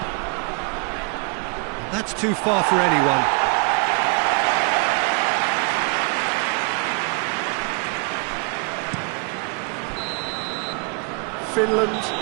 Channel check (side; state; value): left; quieter; 35.3 dB